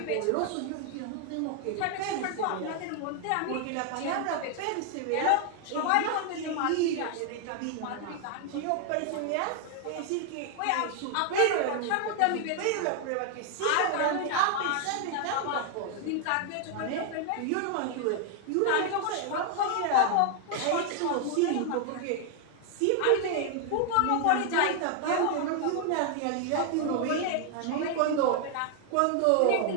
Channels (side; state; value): both; different; correlation 0.00